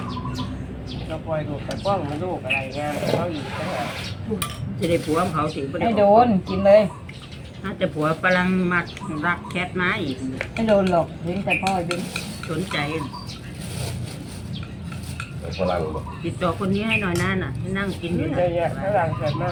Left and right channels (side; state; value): both; identical; correlation 1.00